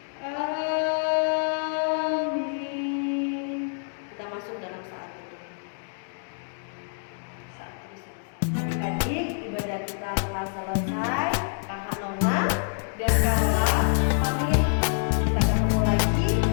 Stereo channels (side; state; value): right; silent; digital silence